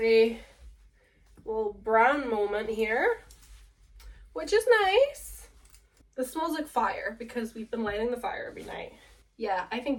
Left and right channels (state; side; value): identical; both; correlation 1.00